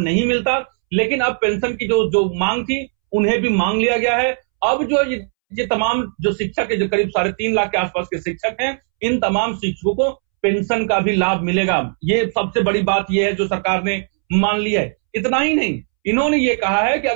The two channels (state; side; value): silent; left; 67 dB below the other